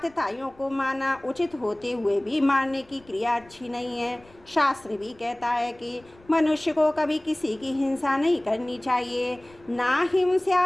को मारना उचित होते हुए भी मारने की क्रिया अच्छी नहीं है। शास्त्र भी कहता है कि मनुष्य को कभी किसी की हिंसा नहीं करनी चाहिए। ना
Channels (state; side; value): noise; left; rumble, 28 dB below the sound